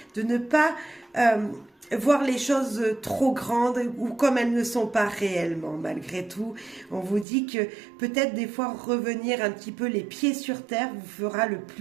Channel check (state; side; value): drops out; left; at 7.2 s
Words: de ne pas voir les choses trop grandes ou comme elles ne sont pas réellement. Malgré tout, on vous dit que peut-être des fois revenir un petit peu les pieds sur terre vous fera le